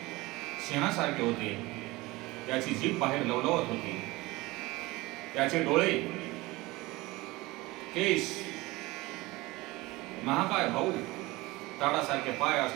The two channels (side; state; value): left; quieter; 21.2 dB